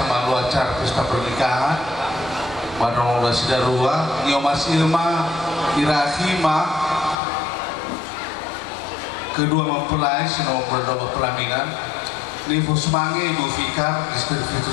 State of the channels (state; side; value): drops out; right; at 7.2 s